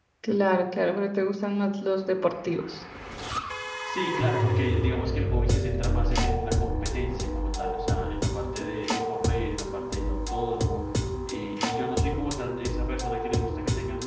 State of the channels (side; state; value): both; identical; correlation 1.00